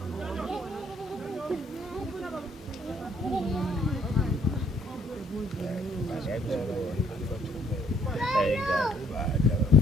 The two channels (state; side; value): normal; both; correlation 0.65